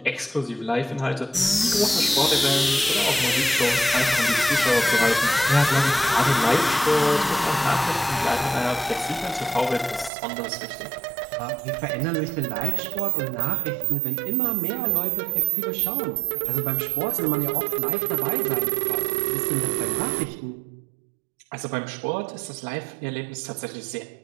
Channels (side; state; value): left; drops out; at 10.1 s